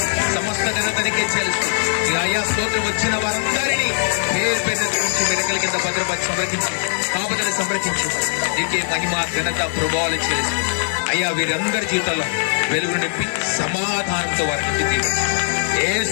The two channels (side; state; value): right; silent; digital silence